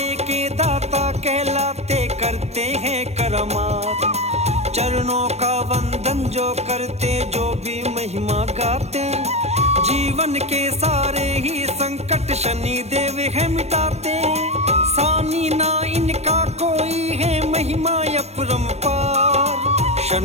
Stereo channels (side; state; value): left; late; 0.31 ms